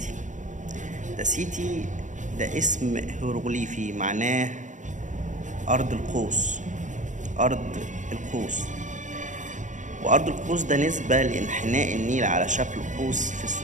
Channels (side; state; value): left; late; 0.36 ms